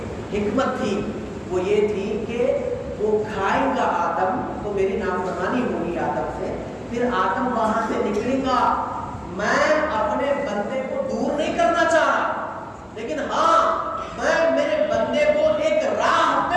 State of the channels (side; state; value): both; identical; correlation 1.00